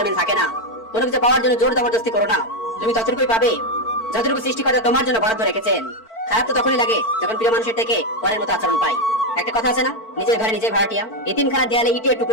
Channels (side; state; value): right; late; 4.5 ms